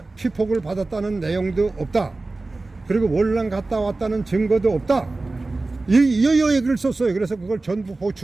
피폭을 받았다는 내용도 없다. 그리고 월남 갔다 왔다는 증거도 없다. 이 얘기를 썼어요. 그래서 그걸 전부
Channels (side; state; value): left; quieter; 3.3 dB